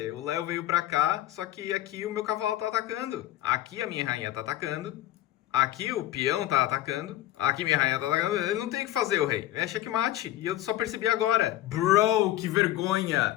O Léo veio pra cá, só que aqui o meu cavalo tá atacando. Aqui a minha rainha tá atacando. Aqui o peão tá atacando. Aqui minha rainha tá atacando. Ele não tem o que fazer, o rei. É checkmate. E eu só percebi agora. Bro, que vergonha.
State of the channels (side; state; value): right; quieter; 14.2 dB